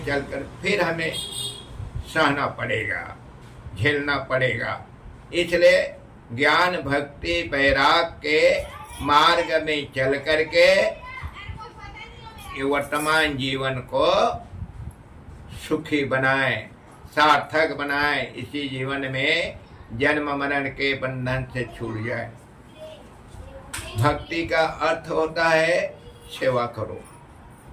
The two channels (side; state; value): both; identical; correlation 1.00